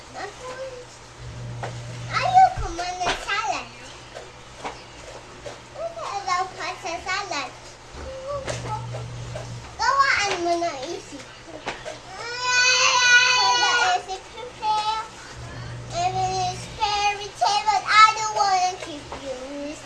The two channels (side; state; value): both; identical; correlation 1.00